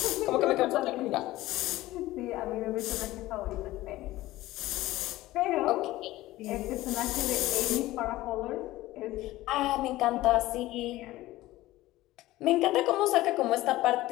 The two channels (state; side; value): quieter; right; 17.0 dB